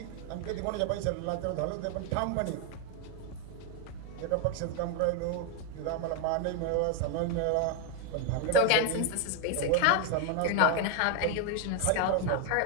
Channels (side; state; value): both; different; correlation 0.01